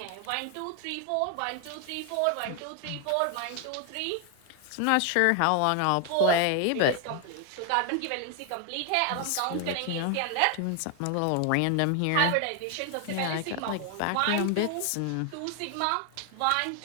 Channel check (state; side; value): different; both; correlation 0.01